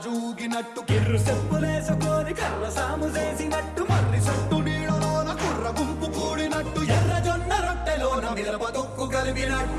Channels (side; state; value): both; identical; correlation 1.00